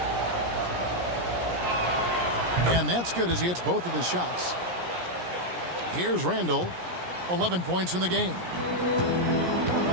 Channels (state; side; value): late; left; 17 ms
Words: And that's good as he hits both of his shots. Here's Randall. 11 points in the game.